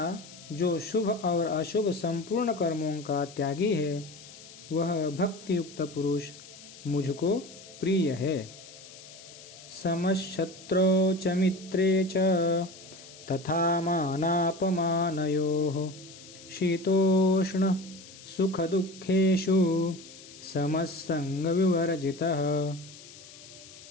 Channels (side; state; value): left; noise; hiss, 18 dB below the sound